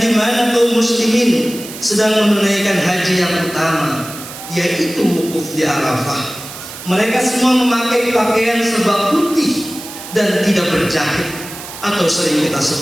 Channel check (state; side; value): noise; right; hiss, 12 dB below the sound